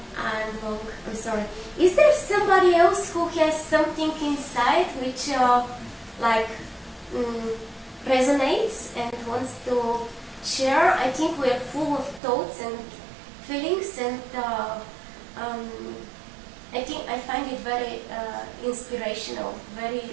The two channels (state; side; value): drops out; left; at 12.2 s